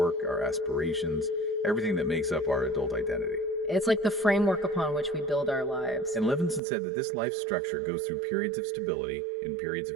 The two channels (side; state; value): left; drops out; at 6.6 s